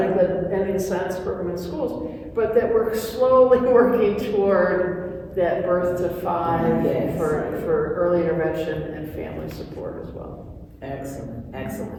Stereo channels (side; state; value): both; identical; correlation 1.00